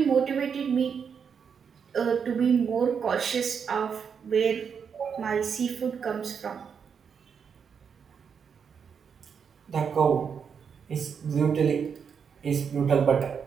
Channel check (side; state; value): left; quieter; 6.8 dB